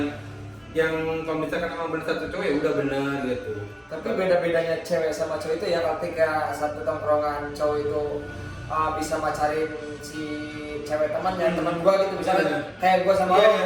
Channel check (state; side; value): identical; both; correlation 1.00